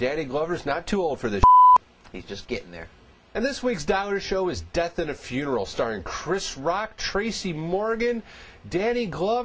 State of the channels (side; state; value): both; identical; correlation 1.00